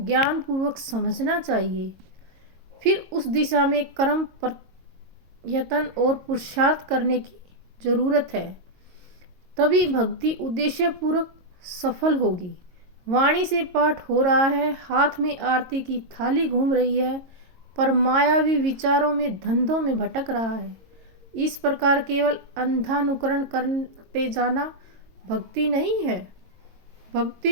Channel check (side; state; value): left; late; 22 ms